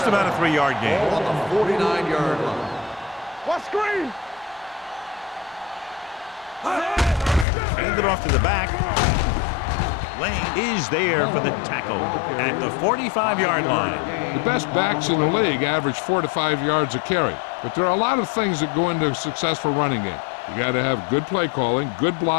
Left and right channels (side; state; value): right; drops out; at 7.5 s